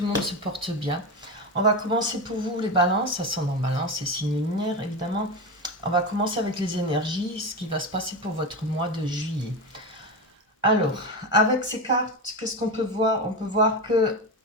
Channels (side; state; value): both; normal; correlation 0.19